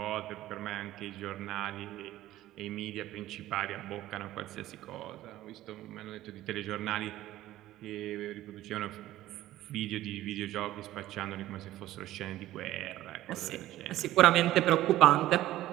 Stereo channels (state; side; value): quieter; left; 14.8 dB